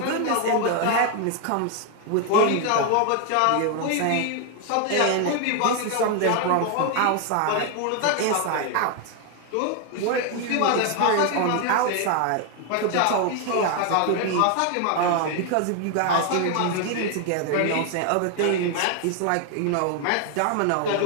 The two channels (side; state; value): both; different; correlation 0.01